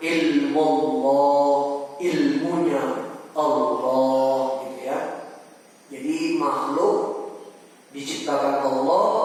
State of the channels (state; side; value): identical; both; correlation 1.00